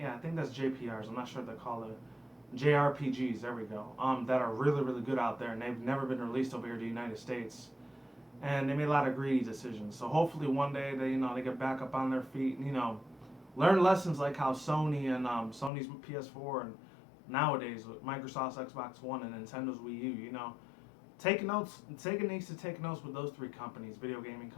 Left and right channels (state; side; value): drops out; right; at 15.7 s